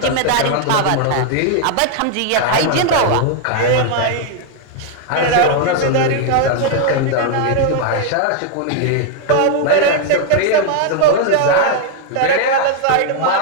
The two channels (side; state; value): both; different; correlation 0.00